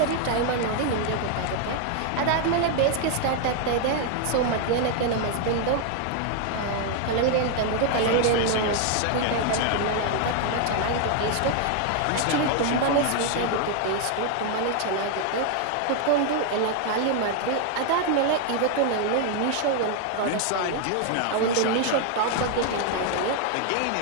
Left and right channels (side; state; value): both; different; correlation 0.00